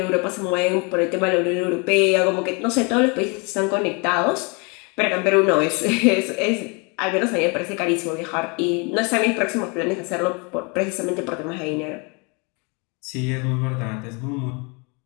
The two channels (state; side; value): quieter; right; 31.8 dB